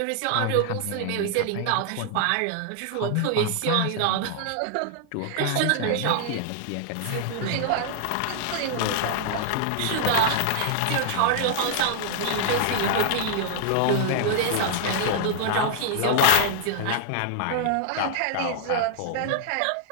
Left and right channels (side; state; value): both; different; correlation 0.00